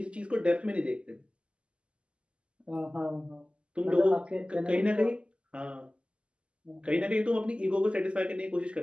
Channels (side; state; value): left; late; 0.054 ms